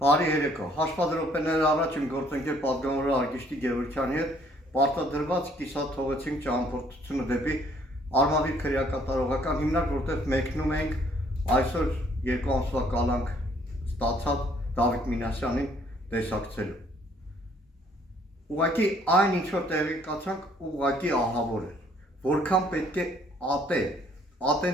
Բարի երեկո, հաշվադրոպեները առաջ իմ գործընկեր պատգամավոր Արգիշտի Գևորգյանի հետ պարտադրված կիսաթողեցինք ճամփորդությունը դեպի Արմավիր քրեակատարողական հիմնարկ, որտեղ մեկնում ենք այսօր 2 ամսվա կալանք ստացած Դավիթ Մինասյանին տեսակցելու։ Ուղղակի այն ինչ որ տեղի կացանք, ուղղակի ահավոր է, որքան պետք է ատեն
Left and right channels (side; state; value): both; normal; correlation 0.63